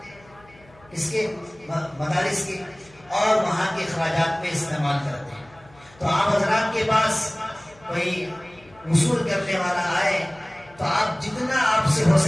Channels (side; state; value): left; noise; hum, 27 dB below the sound